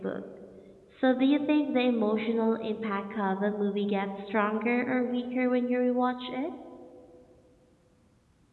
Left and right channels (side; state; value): both; identical; correlation 1.00